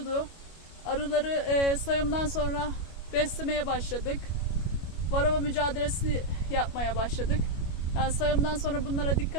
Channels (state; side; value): late; right; 25 ms